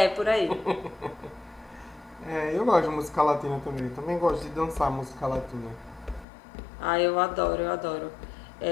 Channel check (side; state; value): right; drops out; at 6.2 s